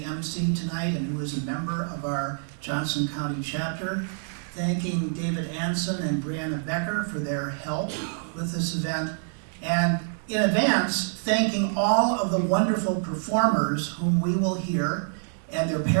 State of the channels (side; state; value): left; silent; 60 dB below the other